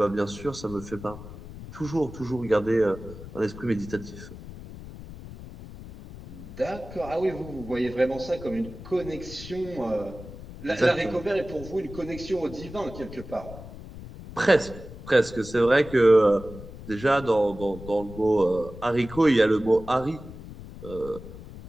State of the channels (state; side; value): noise; left; rumble, 14 dB below the sound